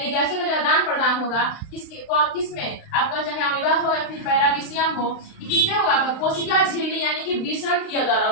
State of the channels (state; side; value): late; right; 35 ms